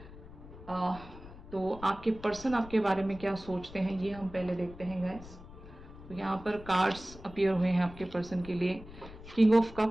तो आपके पर्सन आपके बारे में क्या सोचते हैं ये हम पहले देखते हैं गाइस। तो यहाँ पर कार्ड्स अपीयर हुए हैं आपके पर्सन के लिए। King of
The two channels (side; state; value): left; noise; rumble, 16 dB below the sound